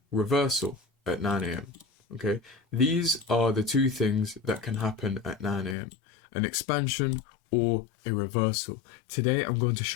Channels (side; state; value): right; drops out; at 5.8 s